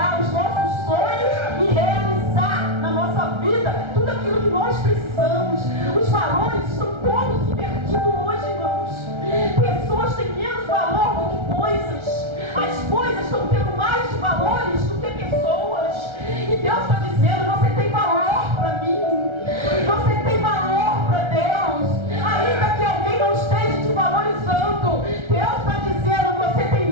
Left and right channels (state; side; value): late; left; 1.3 ms